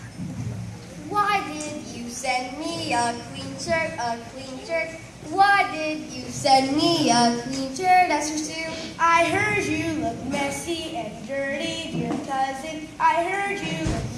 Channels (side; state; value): both; identical; correlation 1.00